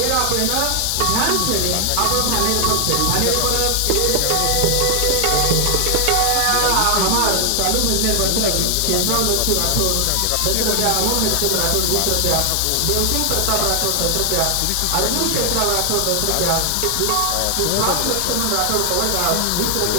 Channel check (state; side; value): different; both; correlation 0.00